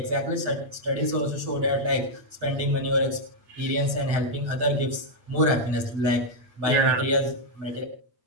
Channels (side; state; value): left; late; 8.7 ms